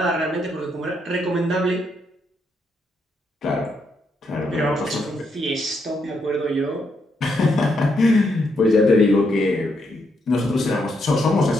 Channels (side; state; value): both; normal; correlation 0.78